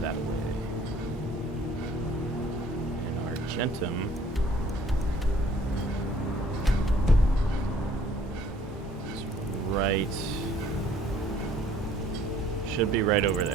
way. And Argentum. Is right. Should be right over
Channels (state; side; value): normal; both; correlation 0.58